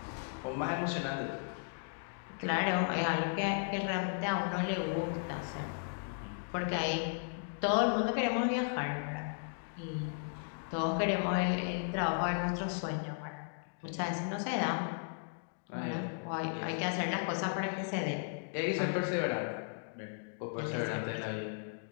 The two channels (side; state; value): right; silent; digital silence